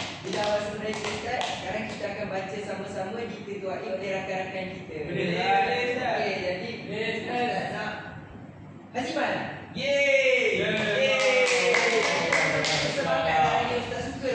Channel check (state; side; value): identical; both; correlation 1.00